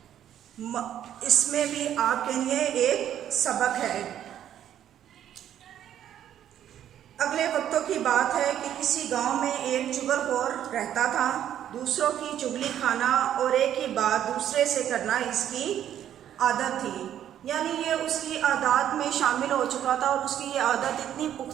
इसमें भी आपके लिए एक सबक है। अगले वक्तों की बात है कि किसी गांव में एक चुगलखोर रहता था। दूसरों की चुगली खाना और एक ही बात दूसरे से करना इसकी आदत थी। यानी ये उसकी आदत में शामिल हो चुका था और उसकी ये आदत इतनी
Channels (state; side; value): quieter; left; 10.6 dB